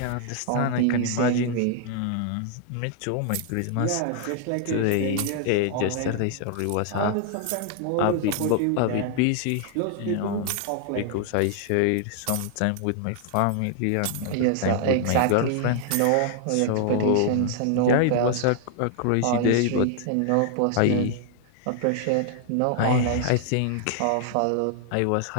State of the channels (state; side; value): different; both; correlation 0.00